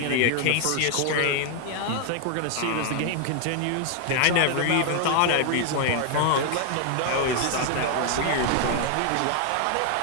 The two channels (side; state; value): both; different; correlation 0.00